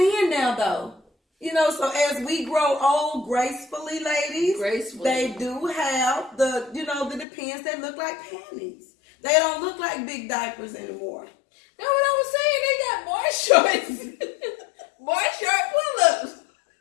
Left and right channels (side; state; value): right; drops out; at 7.2 s